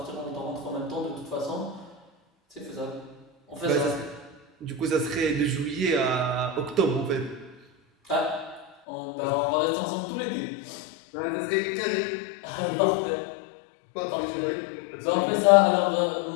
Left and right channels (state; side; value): drops out; right; at 8.7 s